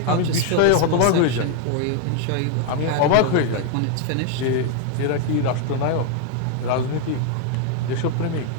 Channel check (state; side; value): different; both; correlation 0.01